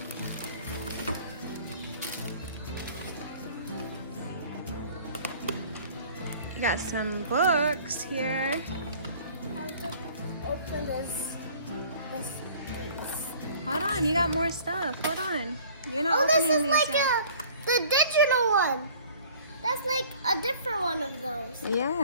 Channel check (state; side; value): inverted; both; correlation -0.51